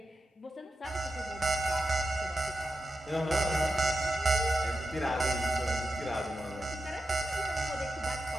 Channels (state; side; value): normal; both; correlation 0.89